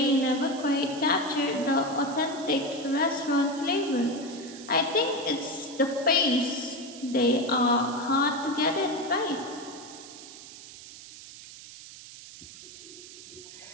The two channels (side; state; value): right; noise; hiss, 16 dB below the sound